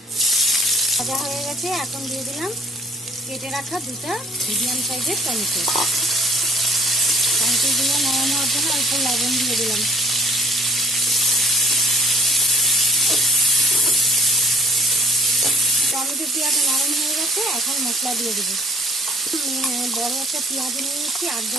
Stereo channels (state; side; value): normal; both; correlation 0.56